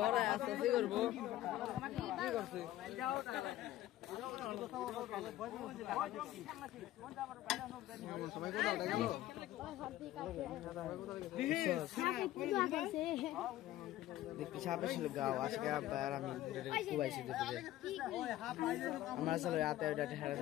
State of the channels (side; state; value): right; quieter; 14.5 dB